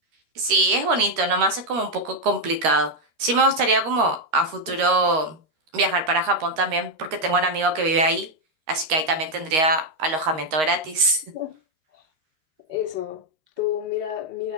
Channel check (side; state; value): left; late; 13 ms